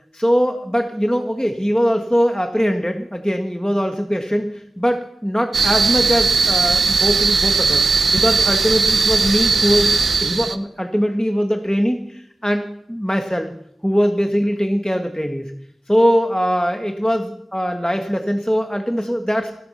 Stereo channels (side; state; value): both; normal; correlation 0.95